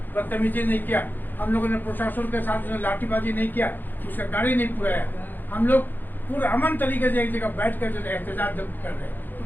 बदतमीजी नहीं किया, हम लोगों ने प्रशासन के साथ लाठीबाजी नहीं किया, उसका गाड़ी नहीं पुराया। हम लोग पूरा अमन तरीके से एक जगह बैठ कर जो एहतजाज कर रहे हैं,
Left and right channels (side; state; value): right; late; 0.088 ms